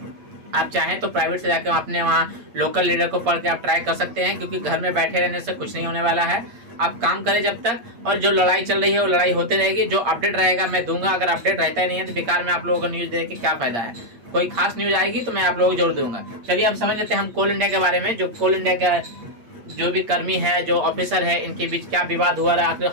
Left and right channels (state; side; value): late; left; 8.6 ms